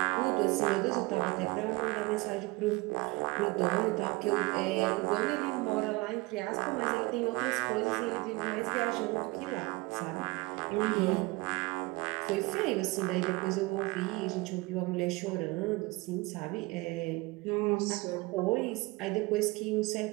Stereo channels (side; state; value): left; quieter; 23.4 dB